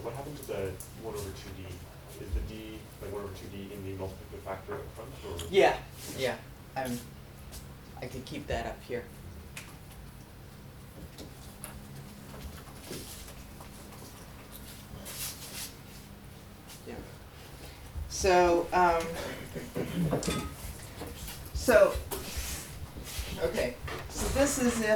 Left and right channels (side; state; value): both; identical; correlation 1.00